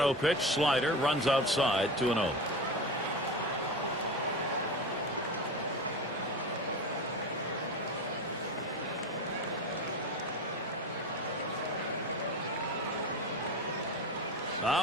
pitch, slider, runs outside, 2-0.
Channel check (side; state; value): both; normal; correlation 0.26